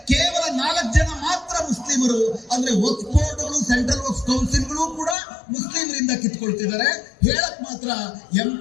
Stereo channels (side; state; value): right; drops out; at 5.2 s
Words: ಕೇವಲ 4 ಜನ ಮಾತ್ರ ಮುಸ್ಲಿಮರು. ಅಂದ್ರೆ ವಕ್ಫ್ ಬೋರ್ಡ್ಗಳು ಸೆಂಟ್ರಲ್ ವಕ್ಫ್ ಕೌನ್ಸಿಲ್ಗಳು ಕೂಡ ಮುಸ್ಲಿಮರಿಂದ ಕಿತ್ಕೊಳ್ತಿದ್ದಾರೆ. ಹೇಳಕ್ ಮಾತ್ರ